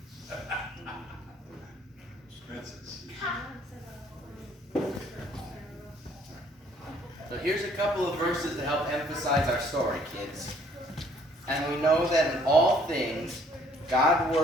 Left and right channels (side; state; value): both; normal; correlation 0.61